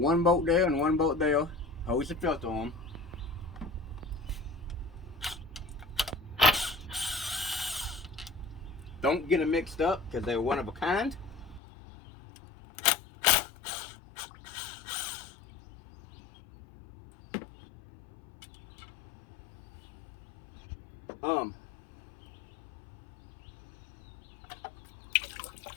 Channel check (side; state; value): right; drops out; at 11.6 s